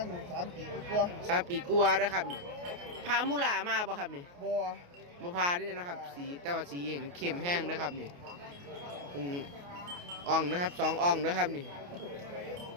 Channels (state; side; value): late; left; 28 ms